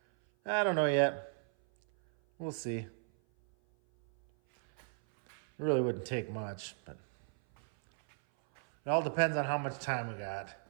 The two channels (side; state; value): left; silent; 54 dB below the other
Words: I don't know yet. We'll see. It really wouldn't take much, but it all depends on how much time we got.